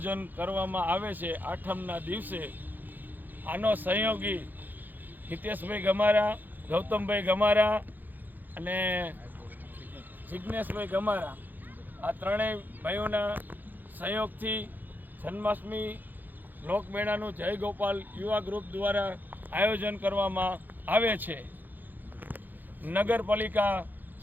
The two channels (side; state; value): left; late; 0.087 ms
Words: કરવામાં આવે છે। આઠમના દિવસે આનો સહયોગી હિતેશભાઈ ગમારા, ગૌતમભાઈ ગમારા અને જિજ્ઞેશભાઈ ગમારા, આ ત્રણેય ભાઈઓના સહયોગથી જન્માષ્ટમી લોકમેળાનું જય ગોપાલ યુવા ગ્રુપ દ્વારા આયોજન કરવામાં આવે છે। નગરપાલિકા